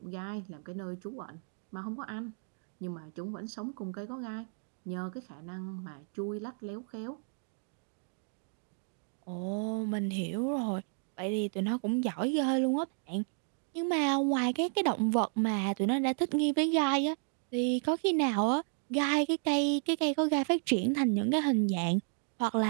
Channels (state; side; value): silent; left; 56 dB below the other